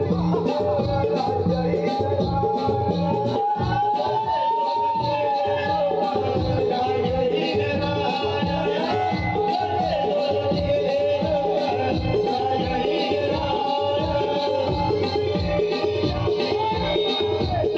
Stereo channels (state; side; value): identical; both; correlation 1.00